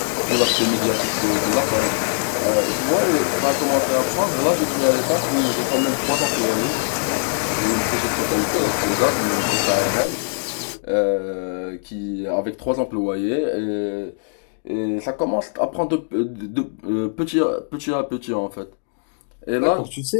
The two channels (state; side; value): silent; right; digital silence